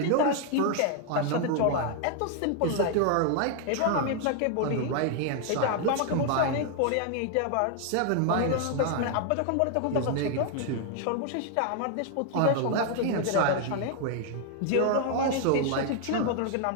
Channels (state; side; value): different; both; correlation 0.00